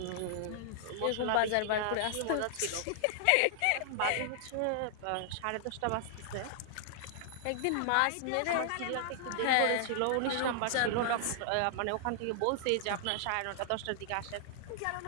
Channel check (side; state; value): both; different; correlation -0.01